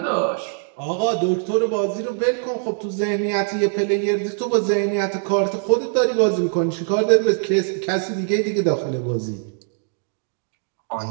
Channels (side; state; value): left; silent; digital silence